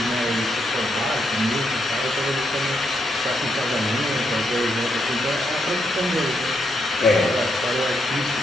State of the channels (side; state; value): both; normal; correlation 0.79